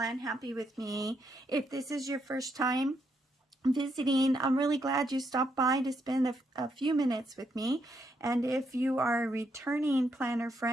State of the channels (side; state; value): both; normal; correlation 0.78